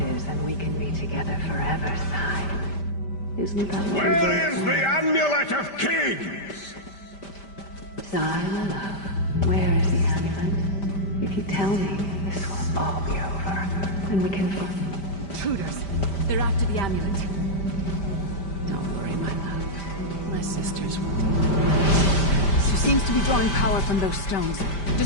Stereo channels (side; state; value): right; late; 5.1 ms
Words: is, and we can be together forever, Sai. Isn't that what Where is the Amulet of Kings? Sai, my love, where is the amulet? If you tell me, this will all be over, and we can find... Intruders! They're after the amulet. Don't worry, my love. My sisters won't. She seems to be drawing power from those stones.